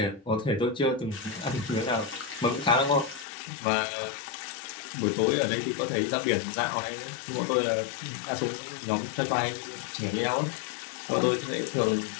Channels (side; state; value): right; drops out; at 3.2 s